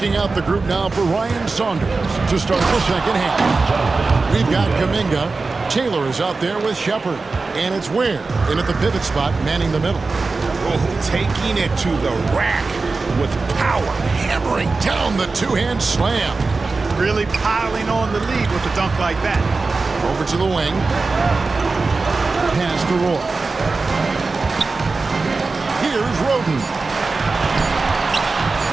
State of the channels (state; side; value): quieter; left; 3.9 dB